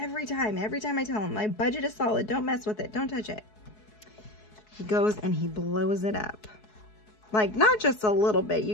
time I tell him my budget is solid, don't mess with it, don't touch it, he goes and he blows it up. Like, not just a little bit.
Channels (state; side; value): late; right; 4.7 ms